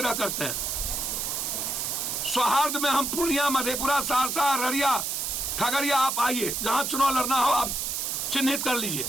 करते हैं, सौहार्द में हम पूर्णिया, मधेपुरा, सहरसा, अररिया, खगड़िया आप आइए, जहां चुनाव लड़ना हो आप चिन्हित कर लीजिए,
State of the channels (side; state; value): right; noise; hiss, 1 dB below the sound